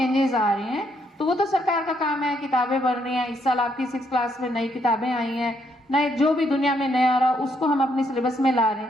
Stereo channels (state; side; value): normal; both; correlation 0.74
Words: आ रहे हैं। तो वो तो सरकार का काम है, किताबें बढ़ रही हैं, इस साल आपकी 6th क्लास में नई किताबें आई हैं, नए जो भी दुनिया में नया आ रहा उसको हम अपने सिलेबस में ला रहे